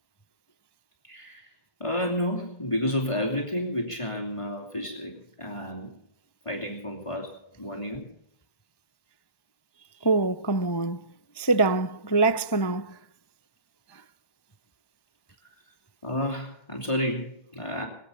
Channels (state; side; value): late; right; 1.2 ms